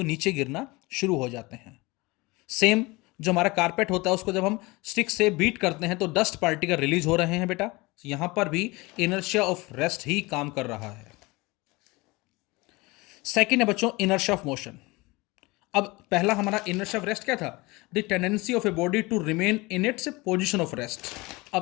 नीचे गिरना शुरू हो जाते हैं। सेम जो हमारा कारपेट होता है, उसको जब हम स्टिक से बीट करते हैं तो डस्ट पार्टिकल रिलीज हो रहे हैं बेटा। यहां पर भी इनर्शिया ऑफ रेस्ट ही काम कर रहा है। सेकंड है बच्चों इनर्शिया ऑफ मोशन। अब पहला हमारा इनर्शिया ऑफ रेस्ट क्या था? The tendency of a body to remain in its position of rest.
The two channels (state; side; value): quieter; right; 23.4 dB